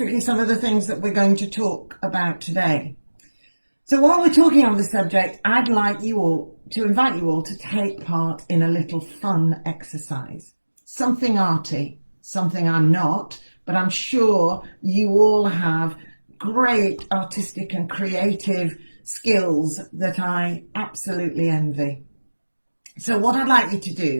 some of the things that we're going to talk about today. So while we're talking on the subject, I'd like you all to invite you all to take part in a little fun exercise. Something arty, something I'm not, but I'm sure you all have great artistic and creative skills that I absolutely envy. So what I'd like you to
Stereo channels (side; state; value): both; inverted; correlation -1.00